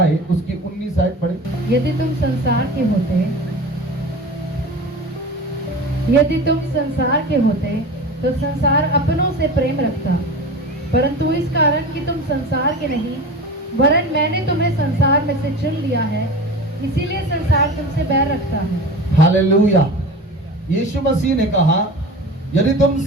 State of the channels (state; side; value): normal; both; correlation 0.33